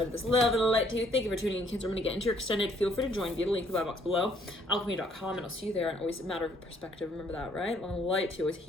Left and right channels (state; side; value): normal; both; correlation 0.65